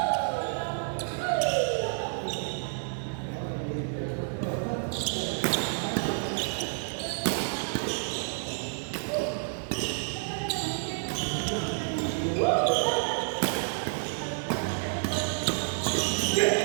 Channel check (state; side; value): silent; left; 58 dB below the other